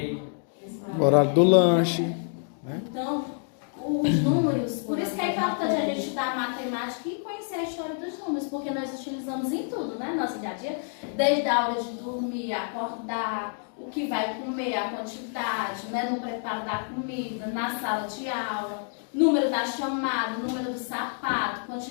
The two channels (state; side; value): silent; right; 57 dB below the other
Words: O horário do lanche. Né? Então, os números, por isso que é importante a gente estudar matemática e conhecer a história dos números, porque nós utilizamos em tudo, né? Nosso dia a dia, desde a hora de dormir, acordar, o que vai comer, a quantidade, né? No preparo da comida, na sala de aula, número da chamada, número do sapato,